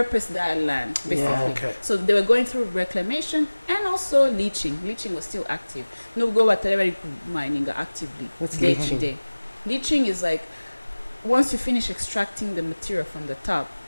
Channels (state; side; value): inverted; both; correlation -1.00